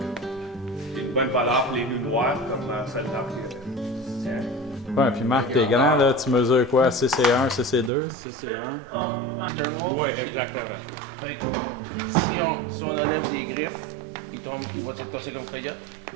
Une bonne valeur pour les loups noirs comme celle-là. Ouais, puis Marc, t'es grand, là, tu mesures quoi? CC1, CC2? Oui, exactement. Si on enlève des griffes, ils tombent, ils vont tasser nos coyotes.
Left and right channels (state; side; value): drops out; left; at 7.9 s